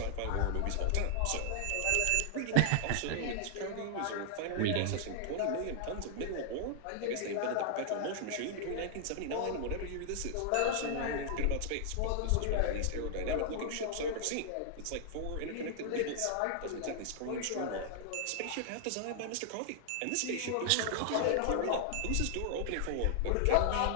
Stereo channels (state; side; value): different; both; correlation 0.00